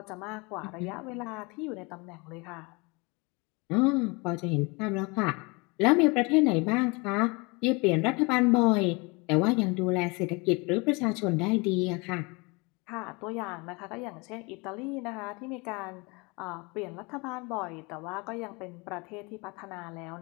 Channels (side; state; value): right; quieter; 27.9 dB